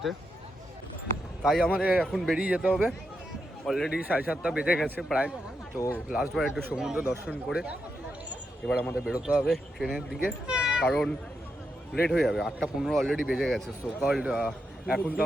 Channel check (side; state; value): both; normal; correlation 0.84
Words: তাই আমাদের এখন বেরিয়ে যেতে হবে। অলরেডি 7:30 বেজে গেছে প্রায়। তো লাস্টবার একটু সমুদ্র দর্শন করে এবার আমাদের বেরোতে হবে ট্রেনের দিকে, কারণ লেট হয়ে যাবে। 8:15 অলরেডি বেজে গেছে। সো কল্ড এখন তো